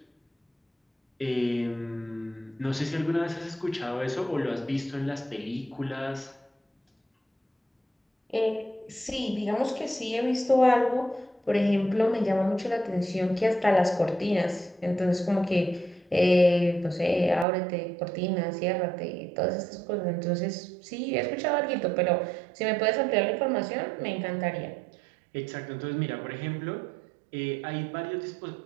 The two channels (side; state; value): left; drops out; at 17.4 s